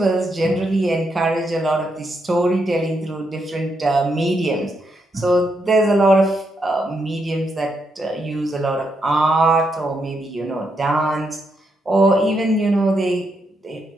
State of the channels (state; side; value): normal; both; correlation 0.80